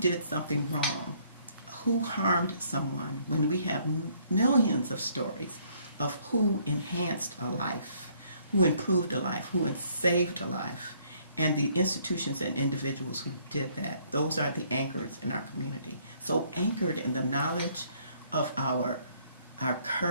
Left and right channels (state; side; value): inverted; both; correlation -0.65